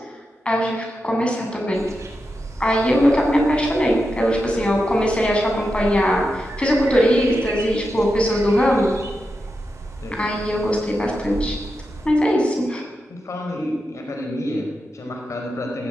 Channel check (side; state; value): both; normal; correlation 0.88